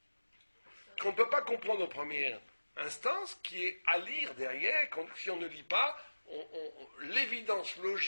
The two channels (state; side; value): inverted; both; correlation -1.00